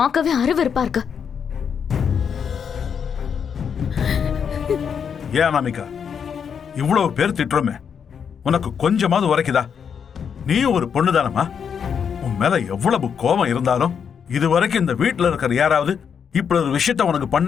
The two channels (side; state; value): right; quieter; 7.2 dB